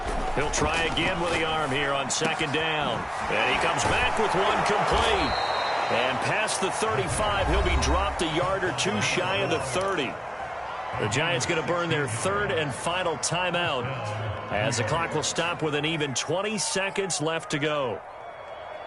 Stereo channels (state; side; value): identical; both; correlation 1.00